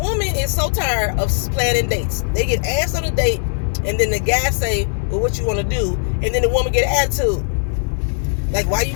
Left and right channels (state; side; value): silent; right; 67 dB below the other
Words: is so tired of planning dates. They get asked on a date, and then the guy say, well, what you want to do? And then the woman get an attitude. Like, why you